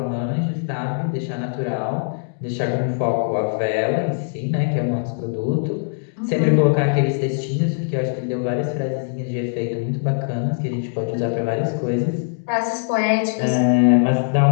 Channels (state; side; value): silent; right; digital silence